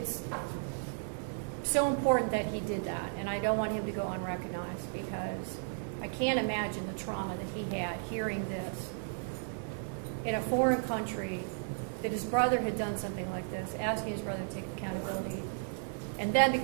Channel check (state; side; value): silent; left; digital silence